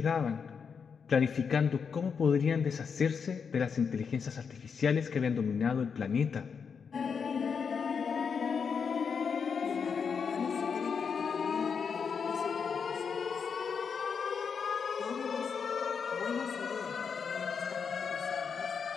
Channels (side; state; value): right; quieter; 6.2 dB